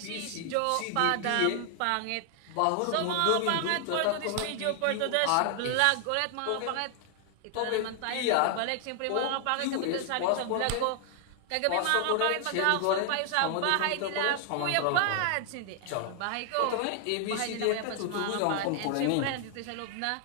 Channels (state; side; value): different; both; correlation 0.00